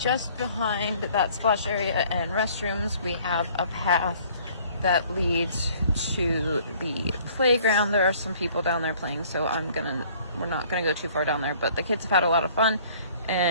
behind that splash area and restrooms, we have a path that leads to the playground. There are some people down there playing, so we're not gonna go too far down there, but the kids have had a lot of fun,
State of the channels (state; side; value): inverted; both; correlation -0.56